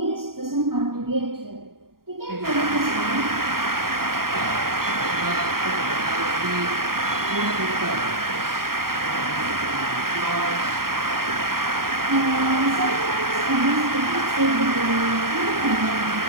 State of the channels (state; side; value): late; left; 0.93 ms